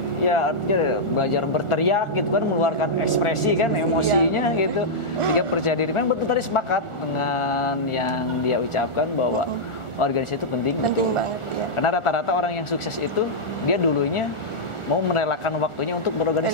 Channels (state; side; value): late; right; 1.4 ms